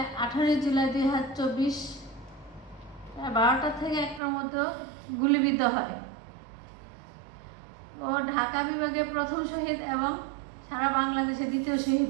18 জুলাই 2024 12টা থেকে 1টার মধ্যে গুলিবিদ্ধ হয়। ও ঢাকা বিভাগে প্রথম শহীদ এবং সারা বাংলাদেশে দ্বিতীয় শহীদ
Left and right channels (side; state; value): left; drops out; at 4.2 s